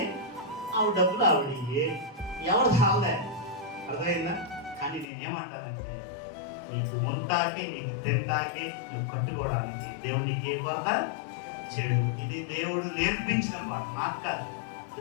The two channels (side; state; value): right; drops out; at 5.1 s